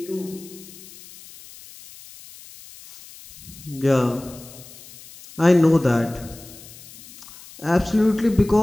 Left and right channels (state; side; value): noise; left; hiss, 19 dB below the sound